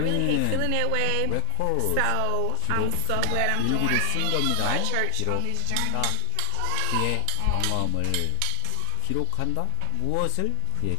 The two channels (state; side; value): different; both; correlation 0.00